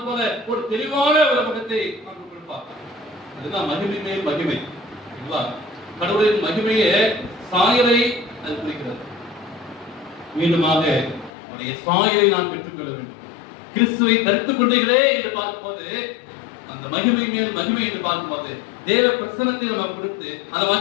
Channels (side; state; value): right; drops out; at 11.3 s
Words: போல ஒரு தெளிவான ஒரு முகத்தை நமக்கு கொடுப்பார். அதுதான் மகிமை மேல் மகிமை. கடவுளின் மகிமையே சாயலை அது குறிக்கிறது. மீண்டுமாக அவருடைய சாயலை நான் பெற்றுக்கொள்ள வேண்டும். கிறிஸ்துவை தரித்துக் கொண்டீர்களே என்று பார்க்கும்போது அந்த மகிமை மேல் மகிமை என்று பார்க்கும்போது தேவ பிரசன்னத்தை நம்ம கொடுத்து அந்த